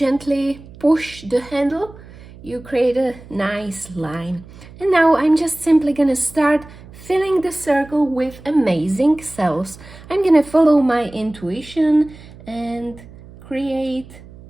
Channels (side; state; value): right; noise; hum, 19 dB below the sound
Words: push the handle, you create a nice line. And now I'm just simply gonna start filling the circle with amazing cells. I'm gonna follow my intuition and create